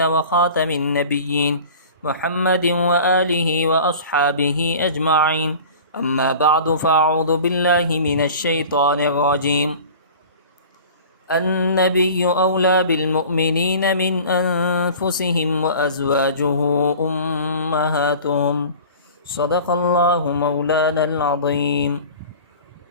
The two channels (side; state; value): both; inverted; correlation -0.41